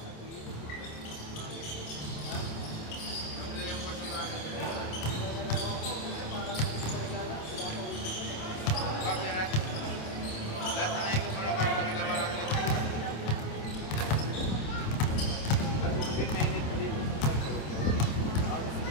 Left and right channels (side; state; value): right; late; 26 ms